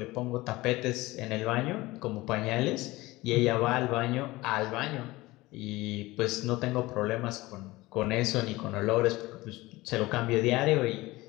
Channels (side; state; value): right; quieter; 19.8 dB